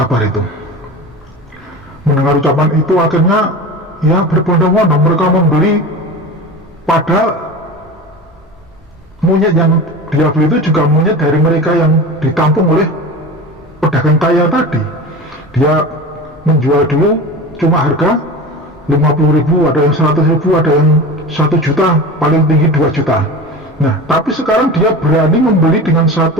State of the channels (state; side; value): normal; both; correlation 0.31